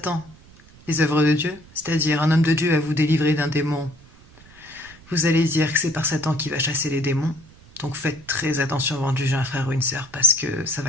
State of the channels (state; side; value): noise; right; rumble, 24 dB below the sound